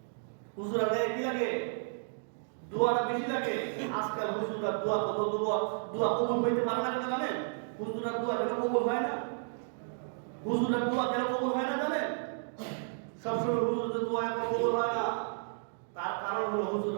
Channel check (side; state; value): left; silent; digital silence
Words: হুজুরের গায়ে কি লাগে? দোয়াটা বেশি লাগে। আজকাল হুজুররা দোয়া কত দোয়া কবুল হইতে পারে না কেন জানেন? হুজুরের দোয়া কেন কবুল হয় না? হুজুরের দোয়া কেন কবুল হয় না জানেন? সবসময় হুজুরের দোয়া এখন কবুল হয় না। তার কারণ হলো